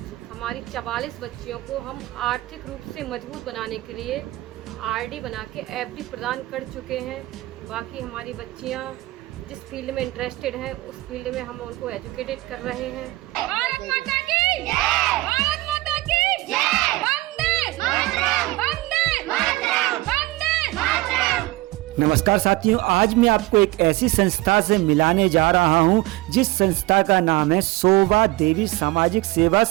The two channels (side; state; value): left; quieter; 19.5 dB